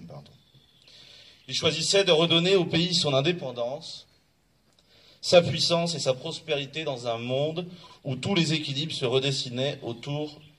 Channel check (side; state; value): both; identical; correlation 1.00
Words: Ils choisissaient de redonner au pays son indépendance, sa puissance et sa prospérité dans un monde où tous les équilibres se redessinaient autour